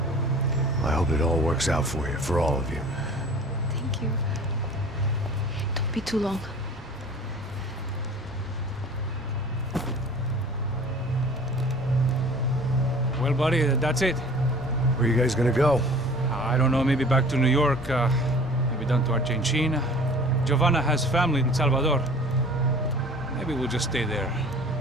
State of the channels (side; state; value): both; normal; correlation 0.46